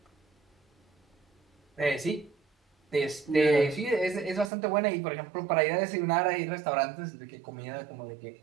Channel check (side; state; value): left; drops out; at 4.5 s